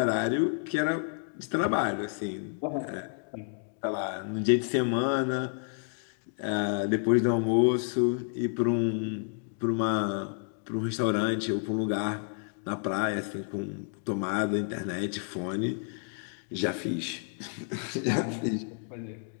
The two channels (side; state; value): right; silent; 56 dB below the other